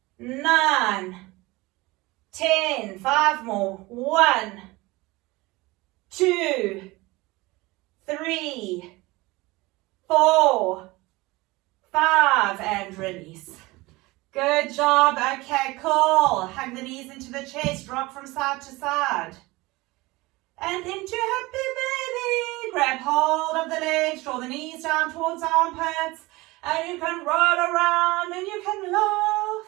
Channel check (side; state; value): left; quieter; 21.6 dB